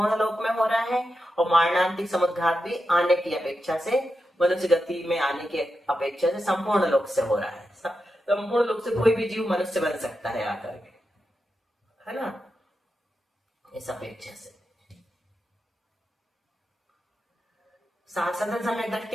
लोक में हो रहा है, और मारणांतिक समुद्घात भी आने की अपेक्षा से, मनुष्य गति में आने की अपेक्षा से संपूर्ण लोक से हो रहा है। संपूर्ण लोक से कोई भी जीव मनुष्य बन सकता है आकर के, है ना, इस अपेक्षा से। साधन समय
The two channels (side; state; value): both; normal; correlation 0.88